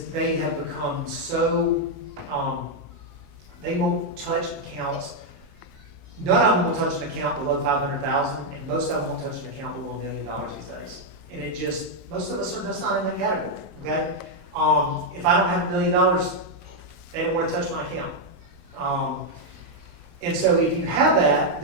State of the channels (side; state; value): both; normal; correlation 0.00